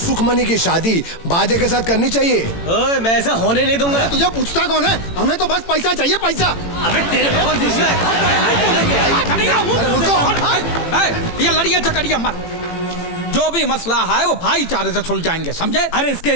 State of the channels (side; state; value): right; late; 18 ms